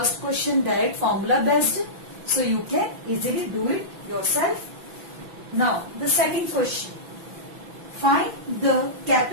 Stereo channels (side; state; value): left; late; 6.0 ms